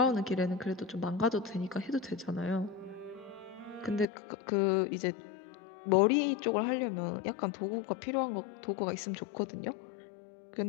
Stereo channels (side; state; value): right; drops out; at 4.0 s